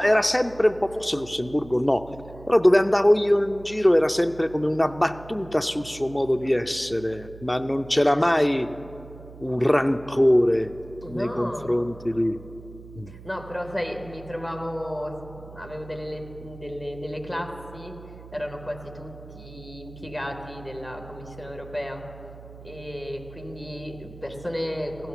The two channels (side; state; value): right; noise; hum, 17 dB below the sound